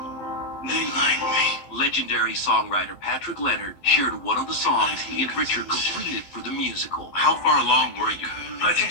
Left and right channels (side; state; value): right; late; 11 ms